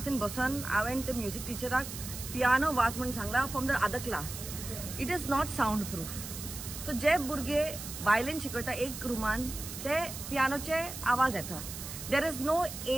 in बसन हांवें ते म्युझिक टिचराक पियानो वाच म्हणून सांगला from the other class. It is not sound proof. So जे भुरगे वायलिन शिकयता एक रुमान ते पियानोचे आवाज येता. There is no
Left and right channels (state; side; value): noise; right; hiss, 9 dB below the sound